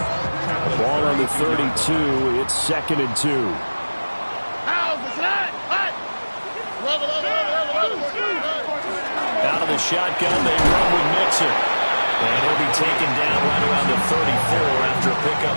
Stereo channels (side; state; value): both; inverted; correlation -1.00